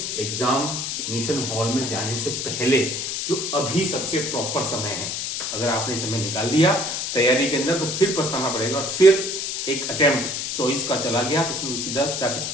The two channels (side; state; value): left; noise; hiss, 3 dB below the sound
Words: एग्जामिनेशन हॉल में जाने से पहले, जो अभी सबसे प्रॉपर समय है। अगर आपने समय निकाल दिया तैयारी के अंदर तो फिर पछताना पड़ेगा, और फिर एक अटेम्प्ट चॉइस का चला गया तो सीधा जाके